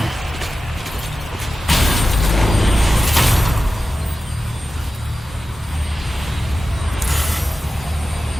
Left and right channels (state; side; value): normal; both; correlation 0.93